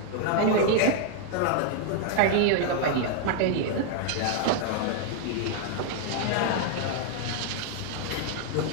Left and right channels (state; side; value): different; both; correlation 0.00